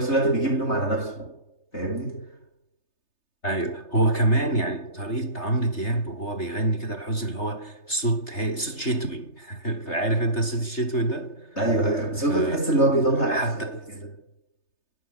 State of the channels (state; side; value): late; right; 3.3 ms